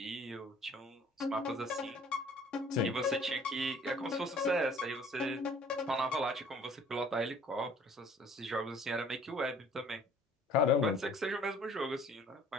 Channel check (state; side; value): normal; both; correlation 0.54